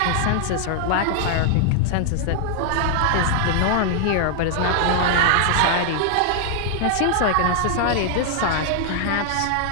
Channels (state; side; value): different; both; correlation -0.01